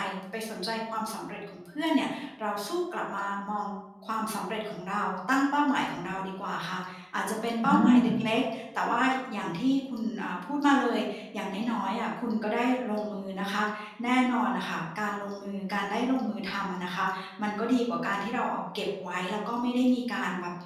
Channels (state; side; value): identical; both; correlation 1.00